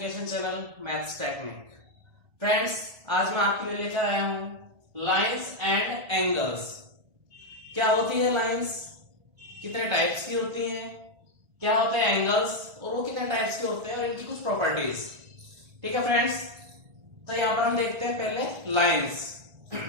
channel maths technique. Friends, आज मैं आपके लिए लेकर आया हूं लाइंस एंड एंगल्स। क्या होती है लाइंस, कितने टाइप्स की होती हैं, क्या होते हैं एंगल्स और वो कितने टाइप्स के होते हैं और इनकी कुछ प्रॉपर्टीज। ठीक है फ्रेंड्स, तो यहां पर हम देखते हैं पहले लाइंस।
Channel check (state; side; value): late; left; 1.5 ms